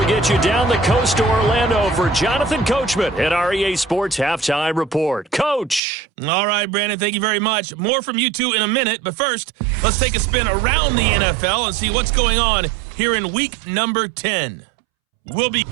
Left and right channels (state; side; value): drops out; left; at 5.8 s